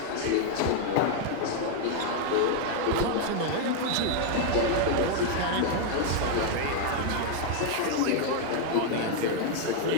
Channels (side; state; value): both; different; correlation 0.00